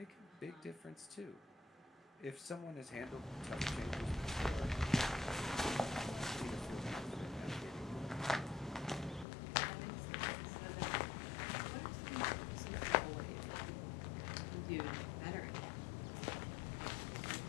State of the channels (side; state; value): right; drops out; at 9.2 s